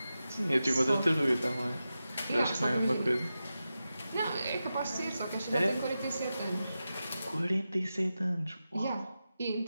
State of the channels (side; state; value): both; inverted; correlation -0.92